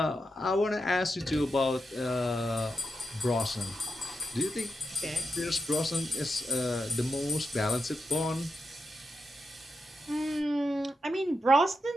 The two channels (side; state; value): both; normal; correlation 0.88